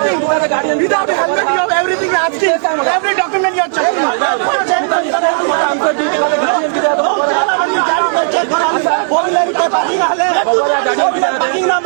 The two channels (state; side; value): silent; left; digital silence